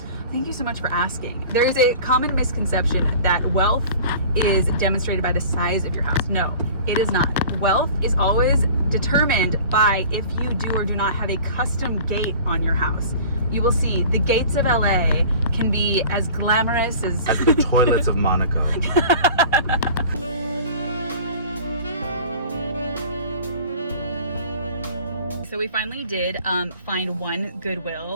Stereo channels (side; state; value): both; inverted; correlation -0.43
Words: Thank you so much for asking. There is a common misconception that wealth is demonstrated by the size of your house. No, it is not. Wealth is always determined by if you do or do not have a custom gate on your house. You will see the gates of LA can be as glamorous as the toilets of Monaco. So we finally did find one